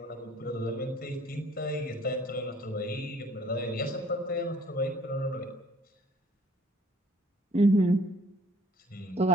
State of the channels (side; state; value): both; normal; correlation 0.58